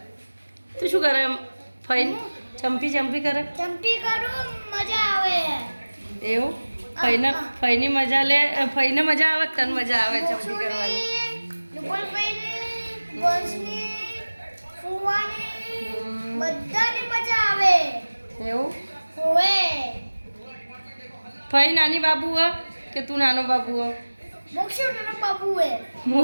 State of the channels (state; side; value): inverted; both; correlation -1.00